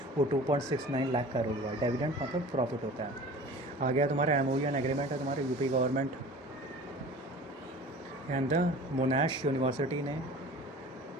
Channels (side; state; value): both; normal; correlation 0.41